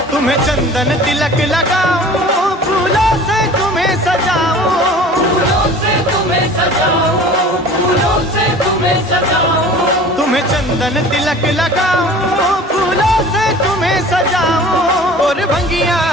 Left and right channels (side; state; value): both; normal; correlation 0.43